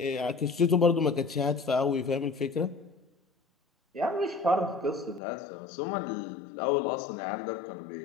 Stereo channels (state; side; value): drops out; right; at 5.2 s